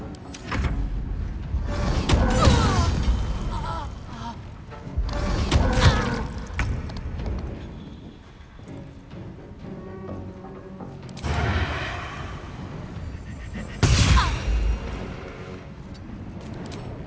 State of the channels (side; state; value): both; identical; correlation 1.00